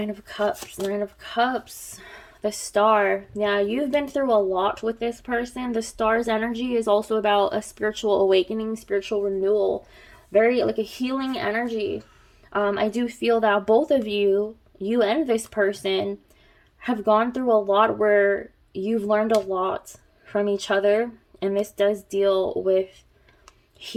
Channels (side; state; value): both; identical; correlation 1.00